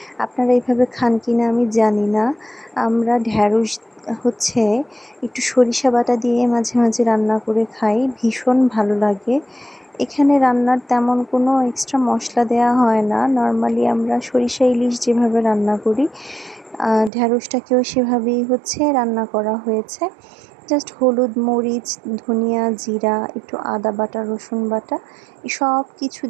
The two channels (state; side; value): drops out; left; at 17.1 s